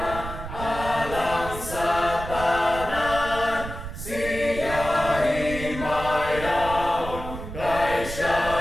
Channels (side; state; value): right; noise; rumble, 9 dB below the sound